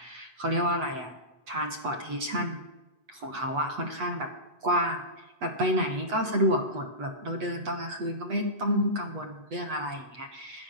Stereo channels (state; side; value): late; left; 8.1 ms